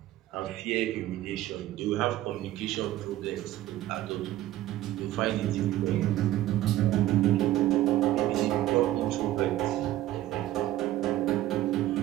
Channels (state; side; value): quieter; left; 14.6 dB